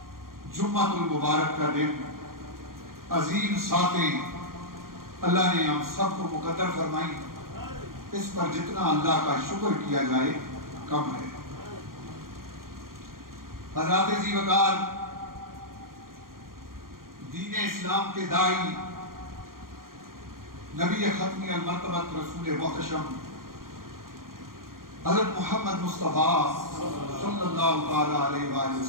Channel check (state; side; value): late; left; 0.91 ms